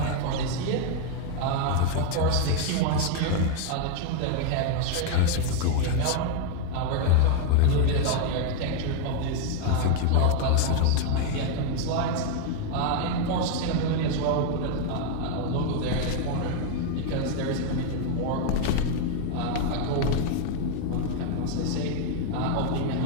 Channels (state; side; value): different; both; correlation 0.01